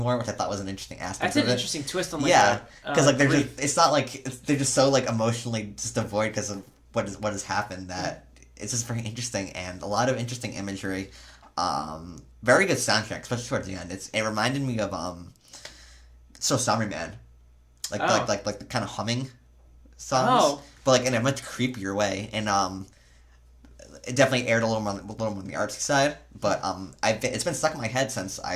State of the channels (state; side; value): identical; both; correlation 1.00